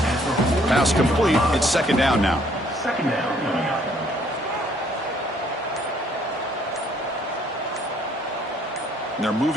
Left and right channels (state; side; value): normal; both; correlation 0.64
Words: Pass complete. It's second down now. Second down coming up. And they're